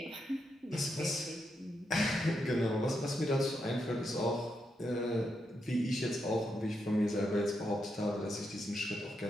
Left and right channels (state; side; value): normal; both; correlation 0.83